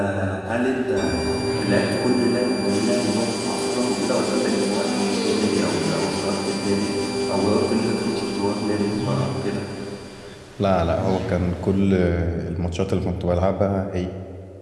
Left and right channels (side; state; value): both; identical; correlation 1.00